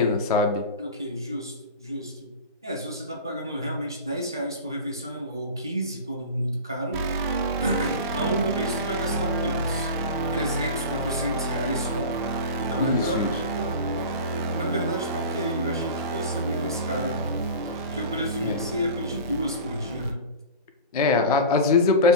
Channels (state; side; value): inverted; both; correlation -0.31